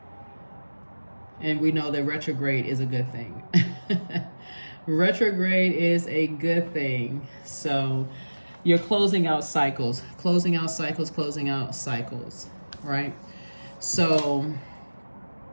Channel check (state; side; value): inverted; both; correlation -1.00